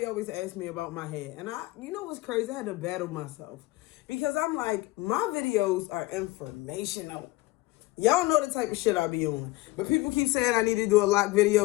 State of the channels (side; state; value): right; quieter; 19.7 dB